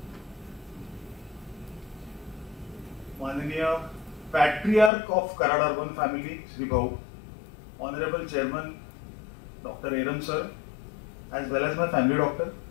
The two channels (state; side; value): drops out; right; at 4.9 s